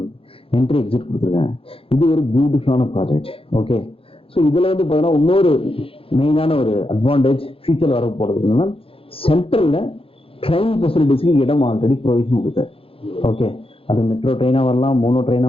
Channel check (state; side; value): late; right; 0.27 ms